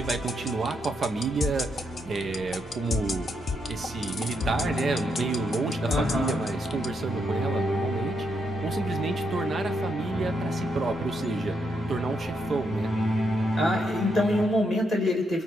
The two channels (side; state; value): both; normal; correlation 0.79